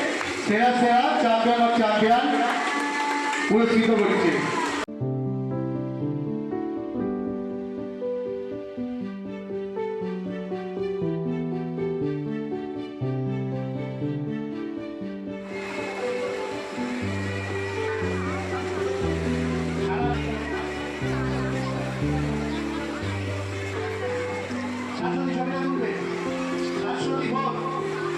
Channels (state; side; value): identical; both; correlation 1.00